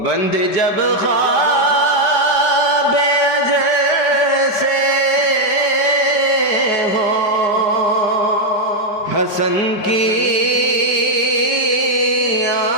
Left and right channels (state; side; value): late; right; 5.1 ms